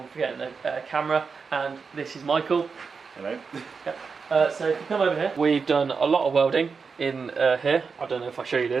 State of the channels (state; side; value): quieter; left; 5.2 dB